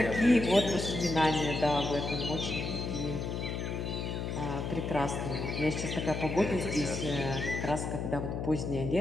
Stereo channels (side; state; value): left; noise; hum, 3 dB below the sound